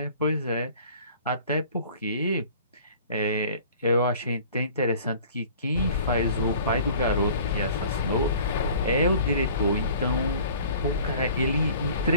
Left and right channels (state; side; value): inverted; both; correlation -0.48